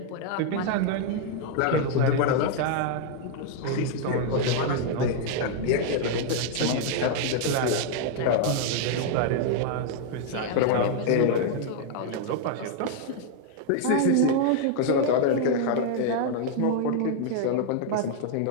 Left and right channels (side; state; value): both; different; correlation 0.00